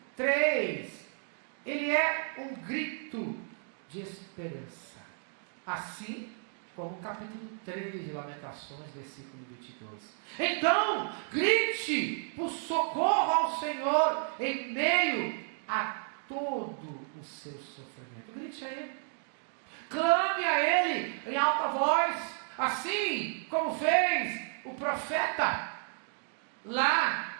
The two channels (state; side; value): silent; left; 56 dB below the other